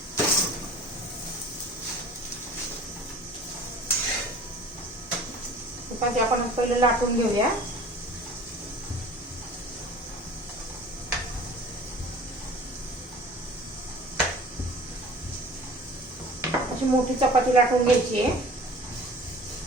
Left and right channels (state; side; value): normal; both; correlation 0.45